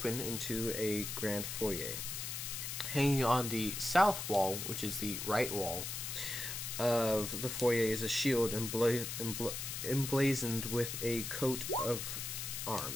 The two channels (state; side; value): noise; left; hiss, 5 dB below the sound